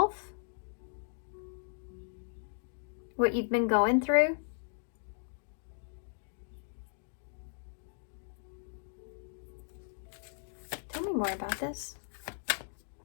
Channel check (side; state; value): right; silent; digital silence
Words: What you've been going through. Tell me more about this.